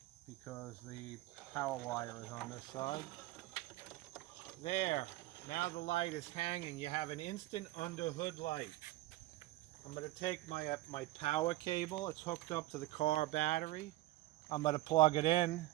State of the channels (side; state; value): left; quieter; 17.6 dB